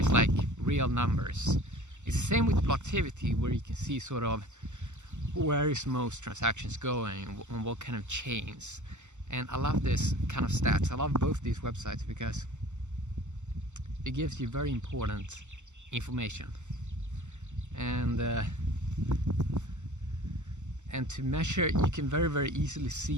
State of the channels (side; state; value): left; late; 0.84 ms